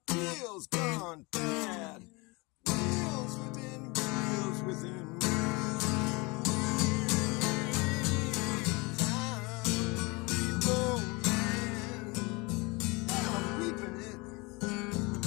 deals gone bad. Wheels within wheels within wheels.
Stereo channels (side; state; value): right; quieter; 26.5 dB